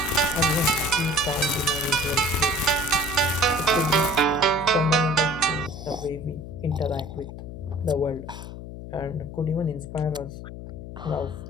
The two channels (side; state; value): left; noise; hum, 11 dB below the sound